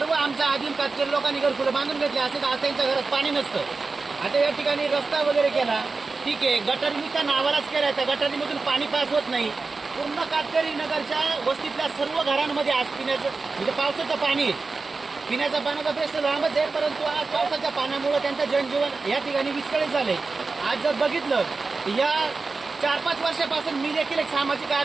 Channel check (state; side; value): quieter; left; 4.0 dB